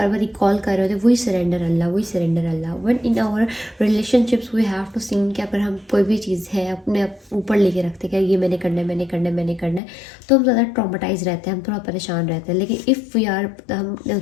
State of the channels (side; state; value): right; drops out; at 9.8 s